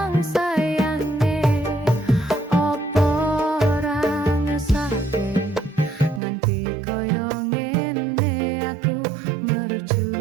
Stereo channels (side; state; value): left; drops out; at 6.2 s